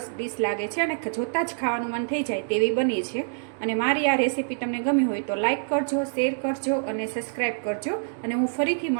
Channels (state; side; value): silent; left; digital silence